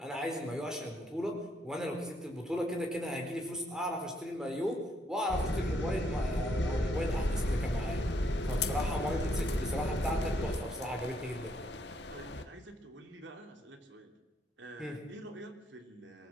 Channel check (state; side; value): normal; both; correlation 0.73